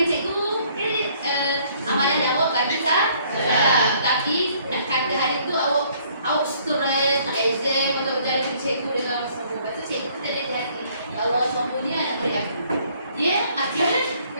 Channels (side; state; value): both; inverted; correlation -0.62